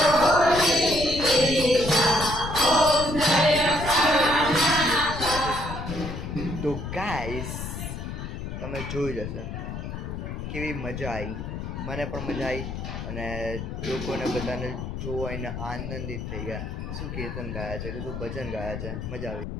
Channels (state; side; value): noise; left; rumble, 6 dB below the sound